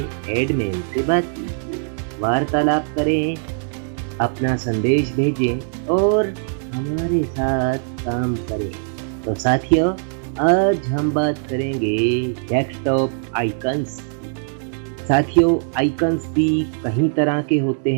एडमिन से बात कीजिए, वार्तालाप करें, अपना संदेश भेजें और हमारे साथ काम करें। तो साथियों, आज हम बात करेंगे डेस्कटॉप आइकन्स। साथियों, आइकन्स भी कई तरह के होते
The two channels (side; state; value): left; silent; digital silence